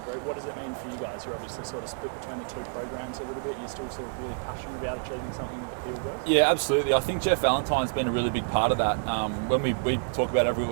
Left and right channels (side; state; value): left; silent; 59 dB below the other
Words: group, what does it mean for you guys? You're obviously sort of split between the two programs a little bit. You're still sort of really passionate about achieving something with the Peel boys? Yeah, absolutely. I think Jeff Valentine's been a really big part of that. When we talk about